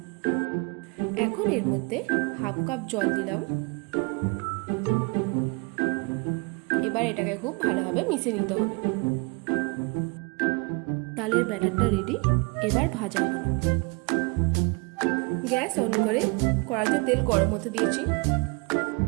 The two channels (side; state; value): left; quieter; 30.1 dB